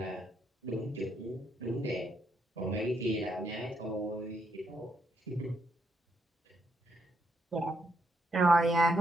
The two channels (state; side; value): normal; both; correlation 0.76